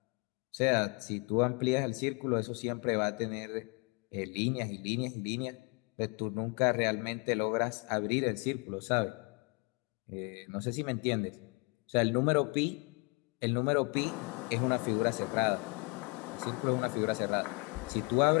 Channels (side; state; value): right; quieter; 30.8 dB